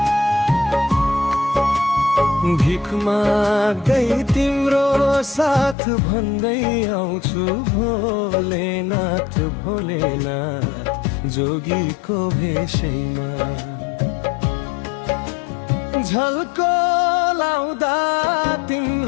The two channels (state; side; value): drops out; right; at 5.8 s